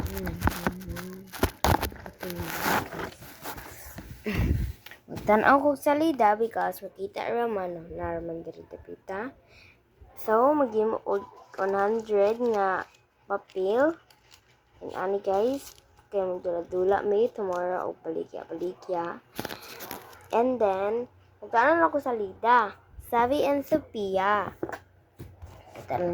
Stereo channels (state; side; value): identical; both; correlation 1.00